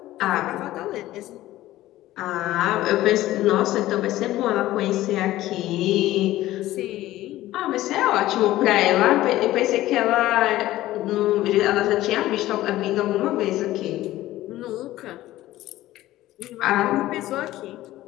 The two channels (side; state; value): right; quieter; 15.6 dB